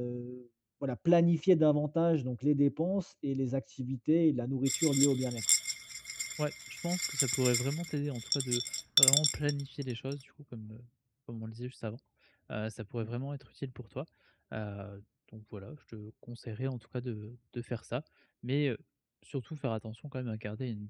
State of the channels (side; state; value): both; identical; correlation 1.00